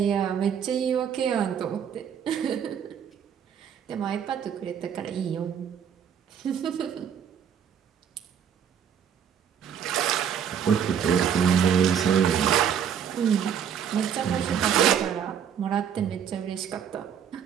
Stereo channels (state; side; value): quieter; left; 8.3 dB